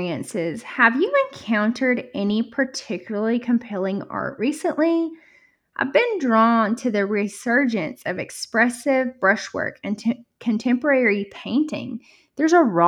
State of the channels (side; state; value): both; identical; correlation 1.00